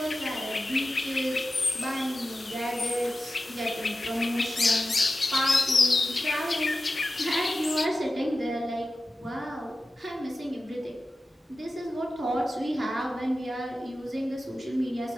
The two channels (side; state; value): both; normal; correlation 0.94